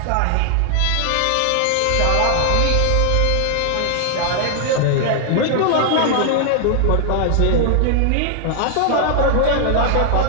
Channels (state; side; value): different; both; correlation 0.00